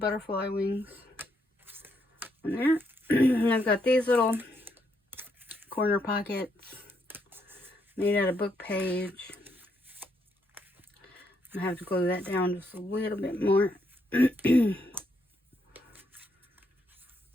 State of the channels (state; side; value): normal; both; correlation 0.76